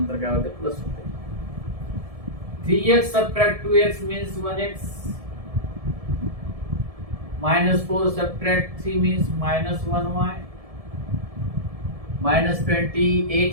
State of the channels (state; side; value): late; left; 1.7 ms